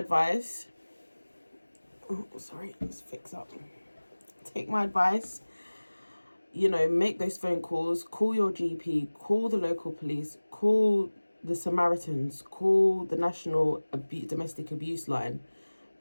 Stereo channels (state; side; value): inverted; both; correlation -1.00